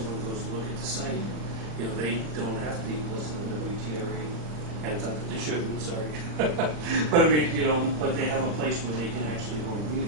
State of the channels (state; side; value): late; left; 39 ms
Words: goes to look at the site, they don't have to listen to WTRA. And it's not that they shouldn't, sorry. But I mean, but they have a place where they can actually go and read